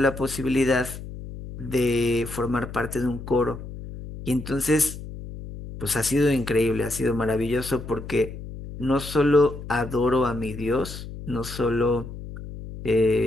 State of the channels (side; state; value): left; noise; hum, 11 dB below the sound